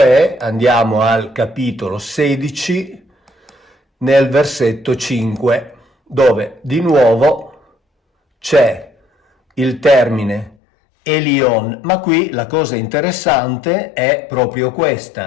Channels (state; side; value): drops out; right; at 10.6 s